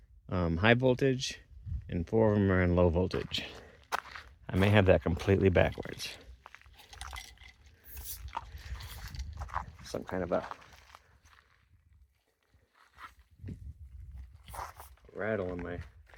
high voltage and 4 of them are in low voltage. I may have that completely backwards. Some kind of a rattle in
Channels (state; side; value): identical; both; correlation 1.00